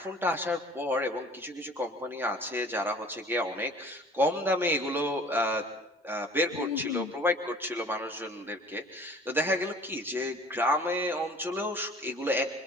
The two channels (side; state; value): both; normal; correlation 0.49